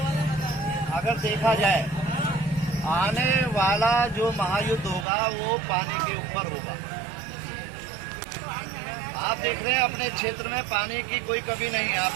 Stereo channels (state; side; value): drops out; left; at 5.1 s